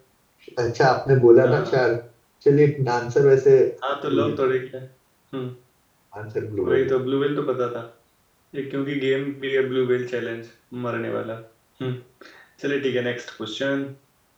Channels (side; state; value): both; identical; correlation 1.00